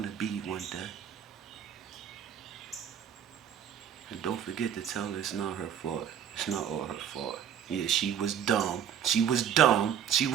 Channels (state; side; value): quieter; left; 9.0 dB